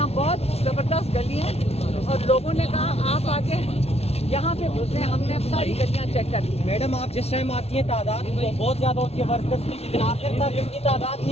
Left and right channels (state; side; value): late; right; 0.30 ms